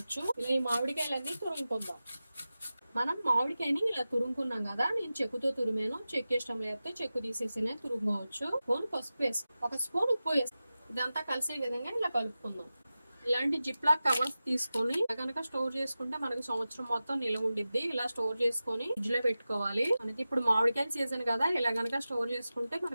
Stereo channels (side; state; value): both; inverted; correlation -0.94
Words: ఇలా ఈ మామిడికాయలన్నీ తురుముకుందాం. మనం మామిడికాయని ఇలా తురుముకున్నాం కదా, నేను చెక్కుతో తురిమాను. చెక్కు ఇష్టం లేకపోతే చెక్కు తీసేసినే తురుముకోవచ్చు. స్పూన్ పసుపు వేసి ఒక స్పూన్ ఉప్పు వేసి ఇదంతా కలిసే విధంగా ఇలా కలుపుకుందాం. ఇలాంటి జిప్లాక్ కవర్స్ తీసుకొని కనుక స్టోర్ చేసుకుంటే మనకి సంవత్సరం మొత్తం నిల్వ ఉండిద్ది. ఇలా స్టోర్ చేసుకొని ఫ్రిడ్జ్ లో పెట్టుకోవాలి. మనకి ఇప్పుడు మామిడికాయ సీజన్ కదా, ఇలా కనుక స్టోర్ చేసుకుంటే